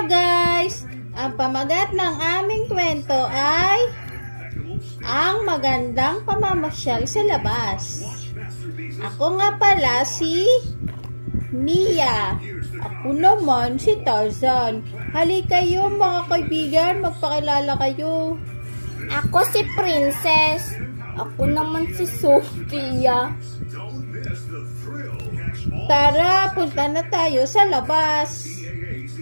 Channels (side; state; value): both; inverted; correlation -1.00